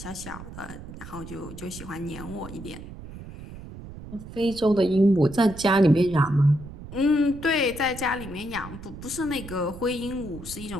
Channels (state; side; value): noise; right; rumble, 13 dB below the sound